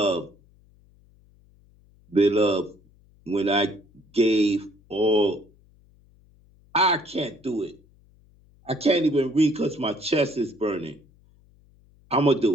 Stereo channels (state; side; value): noise; left; hum, 30 dB below the sound